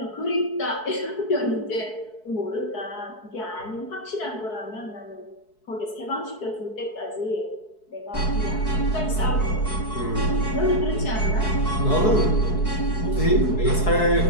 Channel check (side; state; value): right; late; 4.7 ms